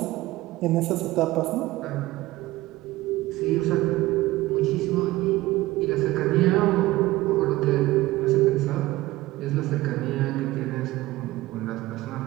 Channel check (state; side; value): quieter; left; 18.1 dB